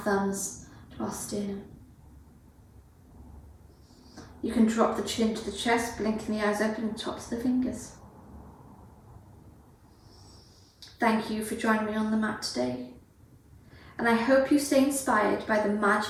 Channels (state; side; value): identical; both; correlation 1.00